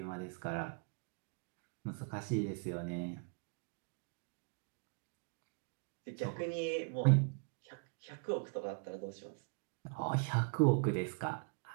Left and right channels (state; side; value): quieter; left; 35.9 dB